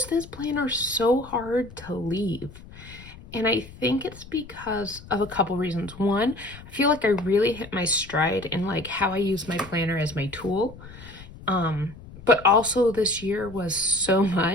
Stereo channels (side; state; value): left; noise; rumble, 17 dB below the sound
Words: this planner so hard to leave? And I think it's because of a couple reasons. One, I feel like I really hit my stride in like how I use my planner as my tool. But also this year was so